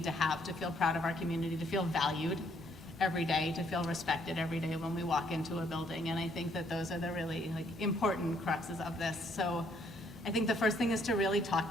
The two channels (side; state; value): both; normal; correlation 0.68